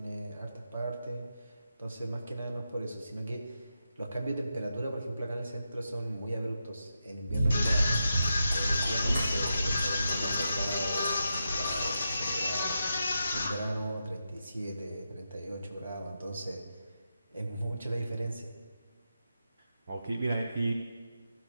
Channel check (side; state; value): both; inverted; correlation -0.87